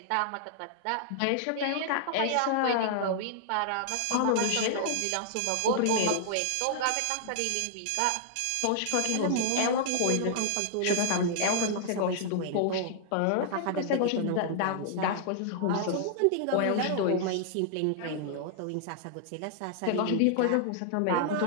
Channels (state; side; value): different; both; correlation -0.01